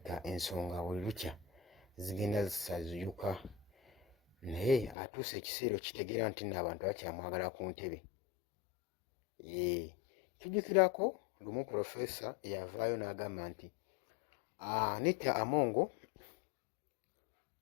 ensonga buli lukya zigenda zisaziyuka, naye atuuse ekiseera okitegeera nti nno abantu bakyamwagala ku ntebe. Tujjukirako lumu Pulofeesa eyavaayo n'agamba nti Anita Among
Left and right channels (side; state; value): right; drops out; at 5.0 s